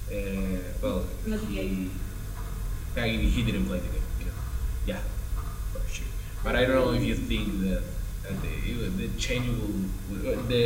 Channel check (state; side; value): identical; both; correlation 1.00